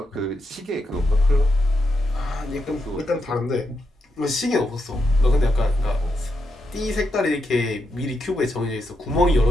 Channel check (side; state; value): both; normal; correlation 0.83